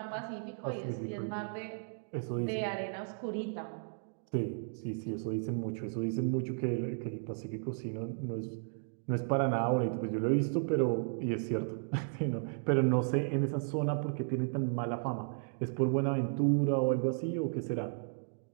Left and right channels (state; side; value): silent; left; digital silence